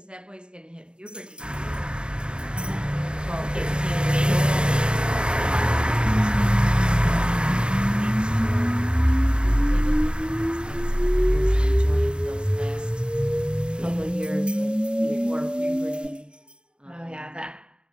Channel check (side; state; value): left; late; 0.050 ms